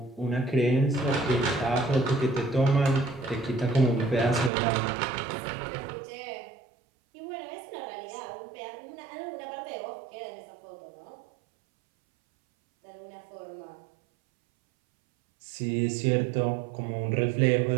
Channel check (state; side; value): drops out; left; at 4.5 s